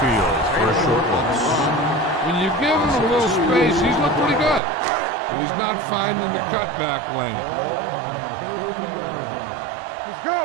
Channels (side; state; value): left; drops out; at 4.6 s